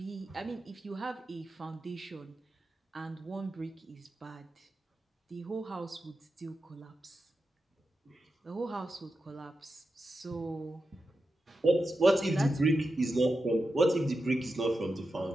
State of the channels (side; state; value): both; normal; correlation 0.90